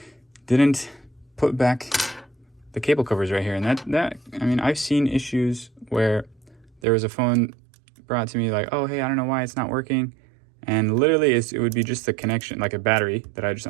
didn't put back the cable covers right here. And that I mean, I've seen issues where there was a phone brought to me like, oh, hey, I don't know why it's not working. And literally it would be just the connection, like a battery that I just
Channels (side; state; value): left; drops out; at 6.8 s